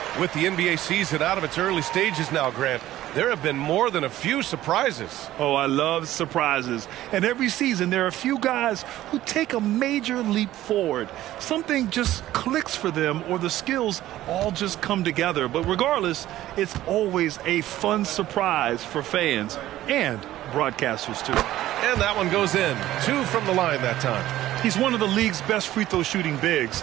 With the NBA season out of its early stages now, Grant, there have been more than a few surprises. Oh, I love surprises. And every season there are a few guys who take a major leap forward. Something just clicks for them or the skills all just come together. But regardless, it's always a fun surprise for fans and broadcasters too. And that one goes in. 2 from the line that time. He's one of the league's best free throw shooting bigs.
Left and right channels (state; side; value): quieter; left; 14.4 dB